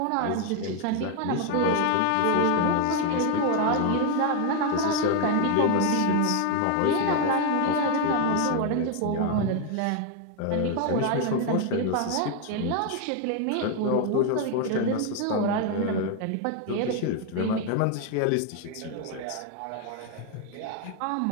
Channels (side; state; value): both; different; correlation 0.01